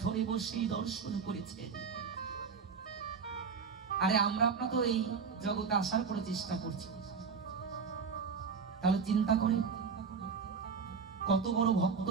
বসেই দর্শন করেছেন। আরে আমরা আপনার তো এই জগতে আসার করে চেষ্টা করছি, তাহলে চিন্তা করে কত বড় ভক্ত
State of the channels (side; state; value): left; quieter; 5.7 dB